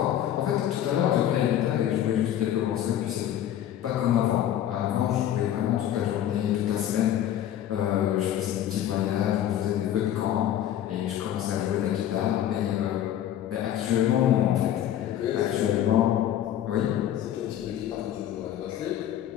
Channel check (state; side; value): quieter; right; 11.2 dB